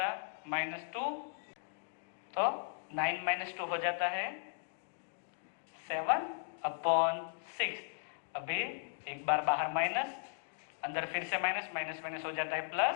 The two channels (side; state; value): right; silent; digital silence